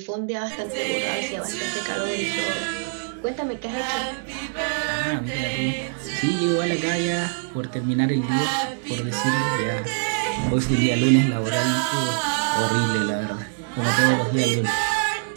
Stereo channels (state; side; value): silent; left; 63 dB below the other